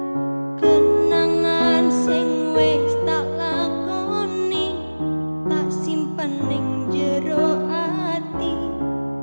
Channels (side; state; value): both; inverted; correlation -1.00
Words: kenangan sing wis tak lakoni tak simpen ning jero ati,